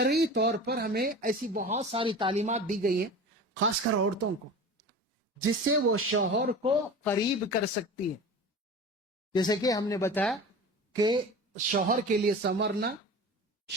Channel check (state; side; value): normal; both; correlation 0.35